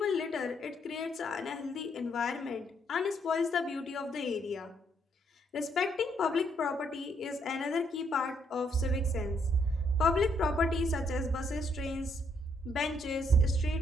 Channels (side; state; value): both; normal; correlation 0.72